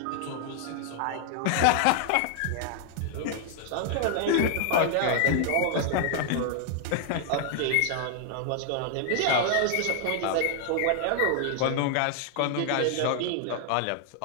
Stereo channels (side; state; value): both; different; correlation 0.00